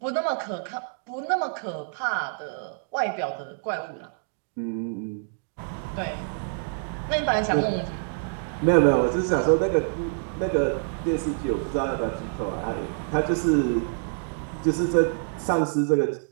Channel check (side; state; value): left; silent; digital silence